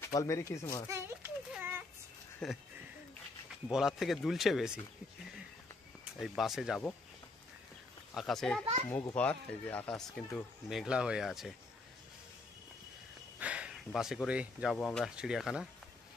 বল মেরি ক্রিসমাস। বলার থেকে দুলছে বেশি। এই বাসে যাব, আকাশে মুখ ভর, এই যে আকাশ কিন্তু মেঘলা হয়ে আছে। বাসে করেই যাব আমরা চিড়িয়াখানা।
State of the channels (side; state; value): right; quieter; 3.2 dB